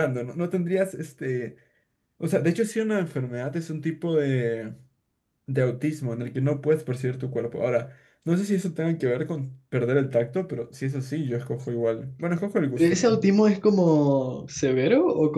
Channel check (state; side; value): identical; both; correlation 1.00